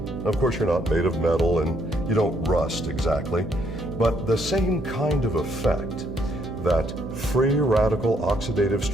of course, you're not made of metal and you don't rust exactly, but the same kind of effect that free radical oxidative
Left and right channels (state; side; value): noise; right; hum, 10 dB below the sound